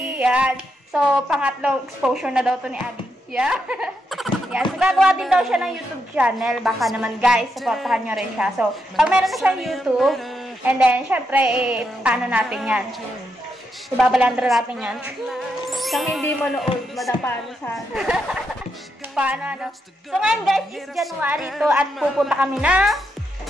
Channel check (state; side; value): normal; both; correlation 0.82